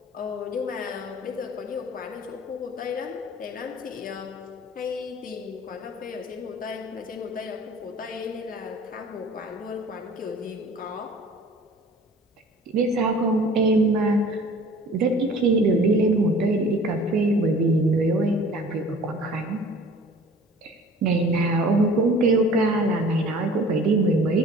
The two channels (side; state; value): both; normal; correlation 0.47